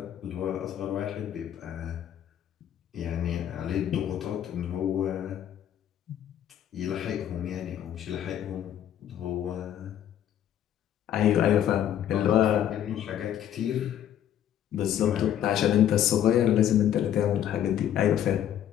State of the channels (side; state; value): right; quieter; 10.5 dB